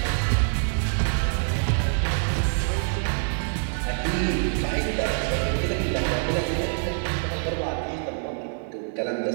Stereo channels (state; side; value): silent; left; digital silence